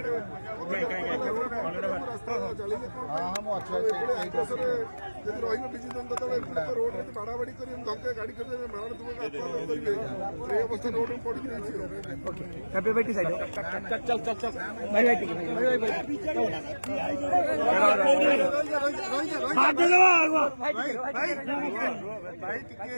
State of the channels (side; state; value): both; inverted; correlation -1.00